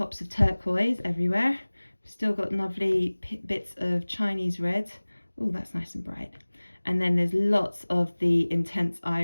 of turquoise everywhere. We've still got lovely bits of Chinese red. Oh, that's nice and bright. And then there's lots of the intense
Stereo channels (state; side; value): inverted; both; correlation -1.00